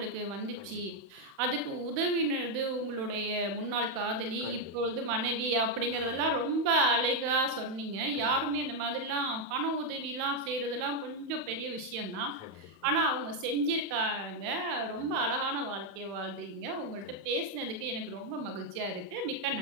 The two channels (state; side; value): late; left; 32 ms